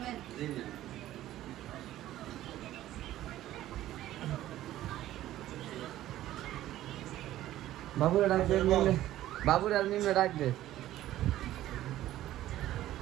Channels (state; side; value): quieter; left; 14.0 dB